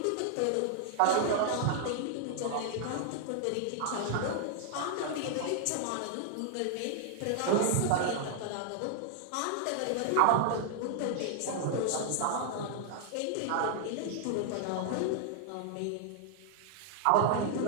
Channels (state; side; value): different; both; correlation 0.00